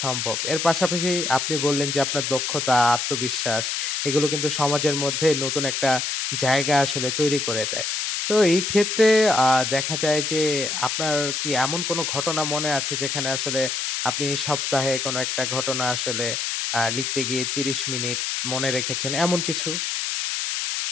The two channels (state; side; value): noise; left; hiss, 1 dB below the sound